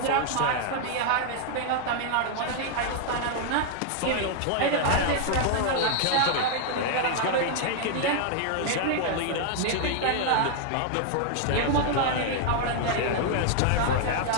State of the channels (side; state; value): both; different; correlation 0.00